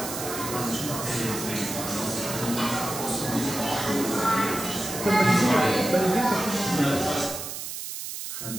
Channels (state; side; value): noise; right; hiss, 7 dB below the sound